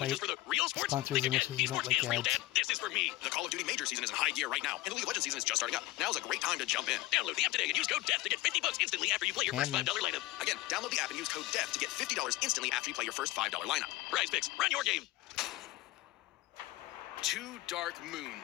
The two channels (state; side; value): quieter; right; 18.2 dB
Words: just for the real sports. sponsors Think unless again. you don't Esports like is real, ads. Dad. This is for me. The Call of Duty Major season is in high gear right now, and the League of Legends season is just starting up. Now's a great time to jump in. Download the app today and use code DEATH to get $50 instantly after you play your first Damn. $5 lineup. Again, download the app and use code DEATH to get $50 instantly after you play your first $5 lineup. Prize Picks, run your game. 2 dark